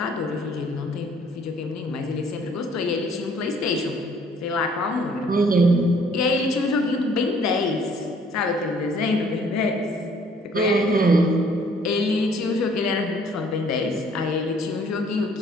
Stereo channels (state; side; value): normal; both; correlation 0.59